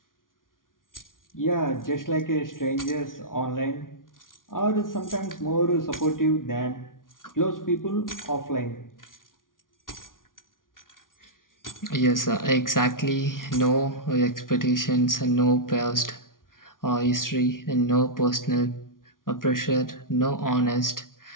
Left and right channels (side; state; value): right; late; 0.89 ms